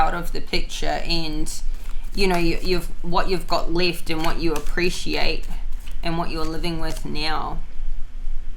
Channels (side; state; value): both; identical; correlation 1.00